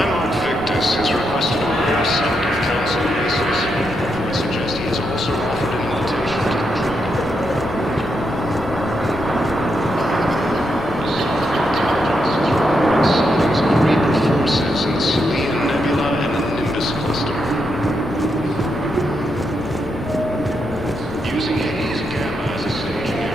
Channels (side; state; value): left; noise; rumble, 15 dB below the sound